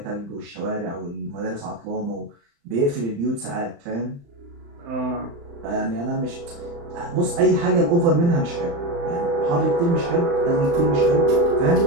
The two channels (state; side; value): late; left; 35 ms